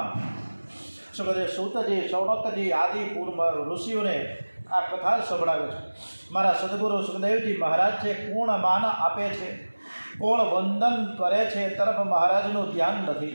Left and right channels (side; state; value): both; inverted; correlation -1.00